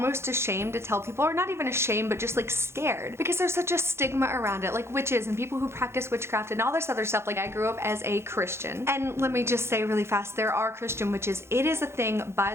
ashamed to tell people, or not even ashamed, but just like scared, because there's such a stigma around it, like witches and people who practice witchcraft and all this other stuff. Like I grew up as a Christian, and let me just say really fast, there are Christian witches. It is a thing, by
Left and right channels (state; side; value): late; left; 0.12 ms